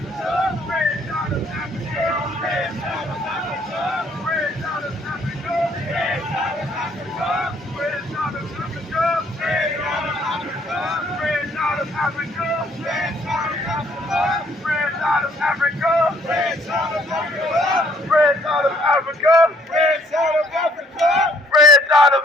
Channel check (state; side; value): normal; both; correlation 0.64